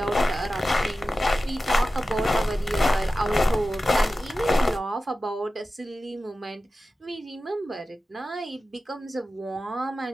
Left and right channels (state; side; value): normal; both; correlation 0.94